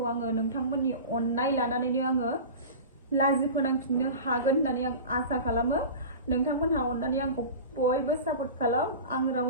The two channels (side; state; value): both; inverted; correlation -0.33